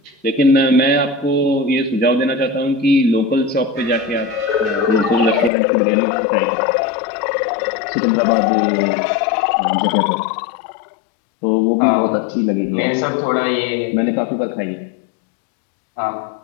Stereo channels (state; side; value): drops out; right; at 5.5 s